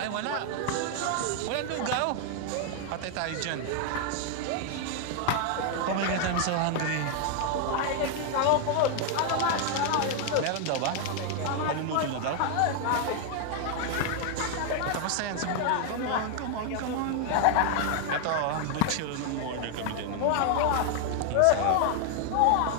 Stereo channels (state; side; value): different; both; correlation 0.00